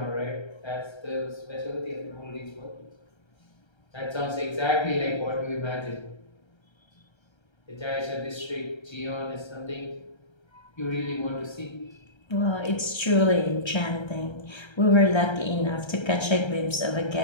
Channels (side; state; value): right; late; 1.3 ms